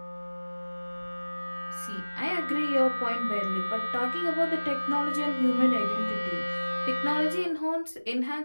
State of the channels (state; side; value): inverted; both; correlation -1.00